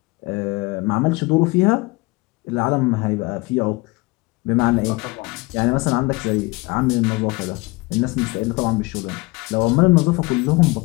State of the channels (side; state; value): right; quieter; 24.0 dB